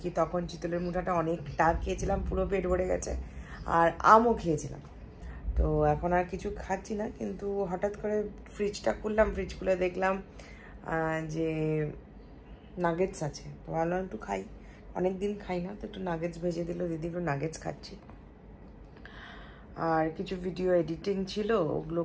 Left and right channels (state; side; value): identical; both; correlation 1.00